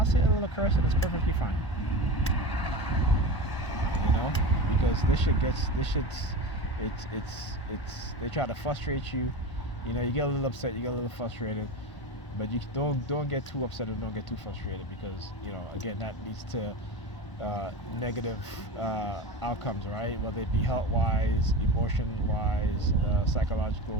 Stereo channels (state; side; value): late; right; 1.5 ms